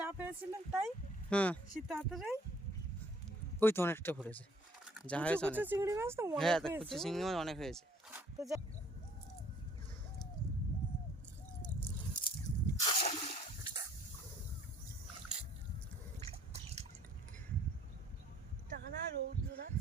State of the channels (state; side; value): normal; both; correlation 0.58